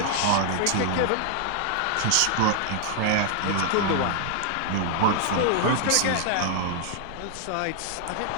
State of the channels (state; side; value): different; both; correlation 0.00